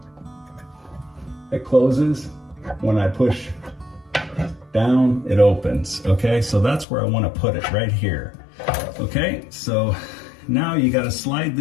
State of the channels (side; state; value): right; drops out; at 6.9 s